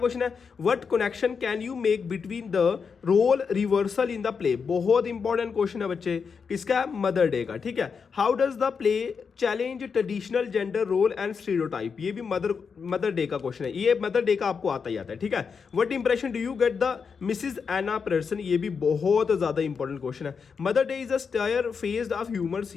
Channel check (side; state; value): right; quieter; 5.8 dB